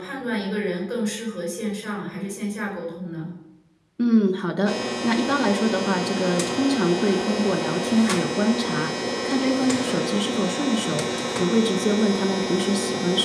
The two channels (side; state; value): both; identical; correlation 1.00